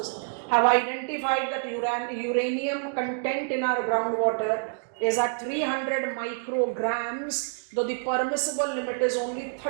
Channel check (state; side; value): silent; left; digital silence